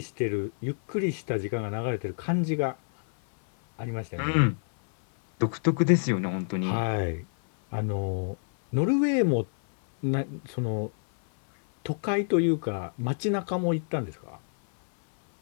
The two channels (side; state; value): right; silent; 60 dB below the other